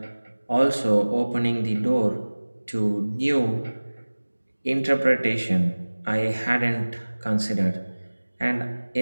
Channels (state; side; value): inverted; both; correlation -1.00